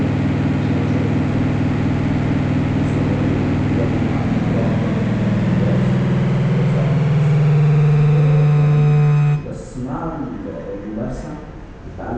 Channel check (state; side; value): identical; both; correlation 1.00